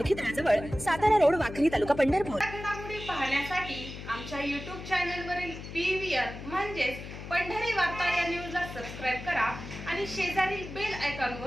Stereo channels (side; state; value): left; noise; hum, 11 dB below the sound